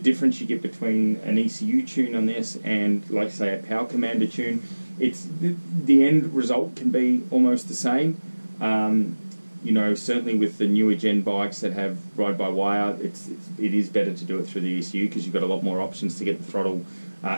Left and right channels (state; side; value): inverted; both; correlation -1.00